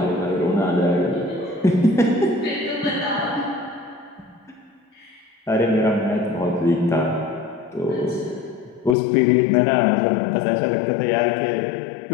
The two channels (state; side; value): drops out; right; at 9.0 s